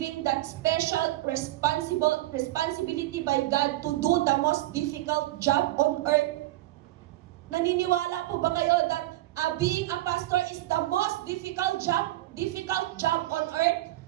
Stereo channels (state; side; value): quieter; left; 16.7 dB